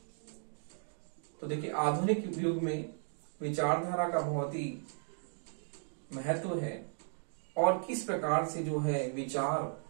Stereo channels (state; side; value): silent; left; 54 dB below the other